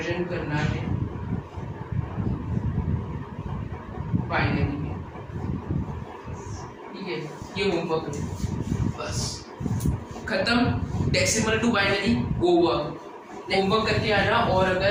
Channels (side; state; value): both; identical; correlation 1.00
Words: करना है बाइनरी में, ठीक है। ये होमवर्क है, बस खत्म। Decimal to binary over. Homework करके आना, और